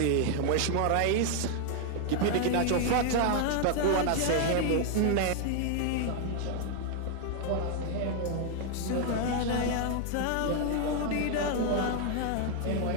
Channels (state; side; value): different; both; correlation 0.00